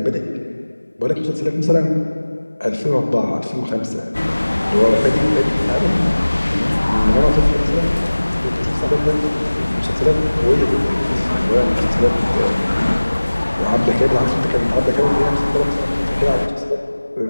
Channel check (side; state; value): both; inverted; correlation -1.00